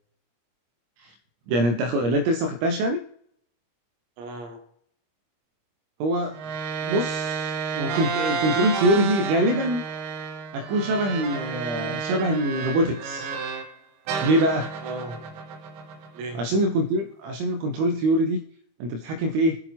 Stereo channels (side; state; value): left; late; 25 ms